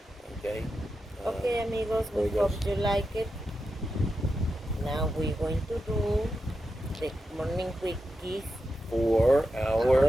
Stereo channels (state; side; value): normal; both; correlation 0.89